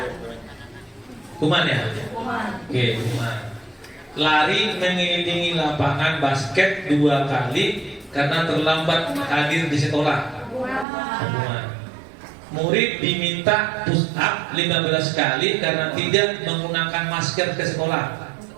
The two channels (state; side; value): drops out; left; at 10.9 s